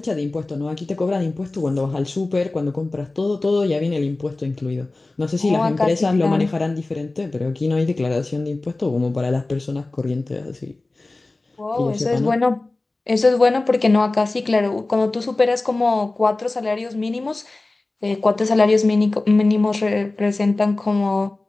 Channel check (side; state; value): right; quieter; 3.1 dB